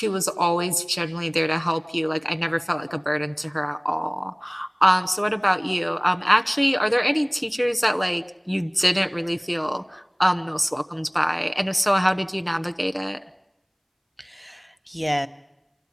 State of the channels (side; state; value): both; identical; correlation 1.00